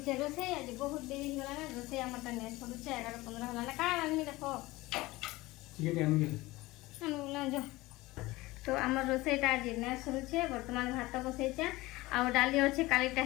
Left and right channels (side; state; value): right; quieter; 19.9 dB